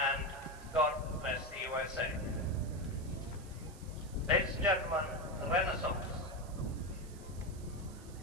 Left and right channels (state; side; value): noise; right; hiss, 20 dB below the sound